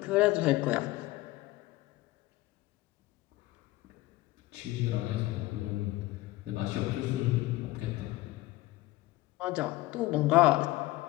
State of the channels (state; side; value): quieter; right; 18.5 dB